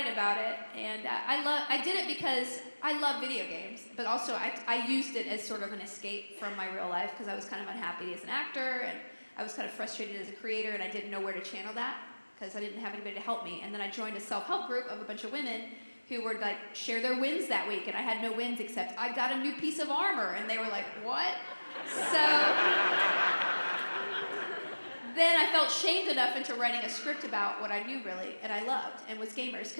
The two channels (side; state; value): both; inverted; correlation -1.00